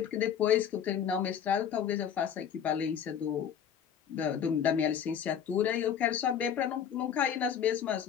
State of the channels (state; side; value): quieter; right; 8.4 dB